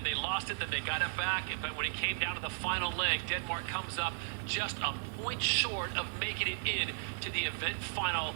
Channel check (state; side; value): silent; left; 54 dB below the other